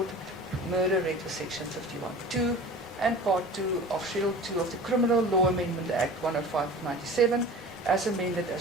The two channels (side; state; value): both; normal; correlation 0.39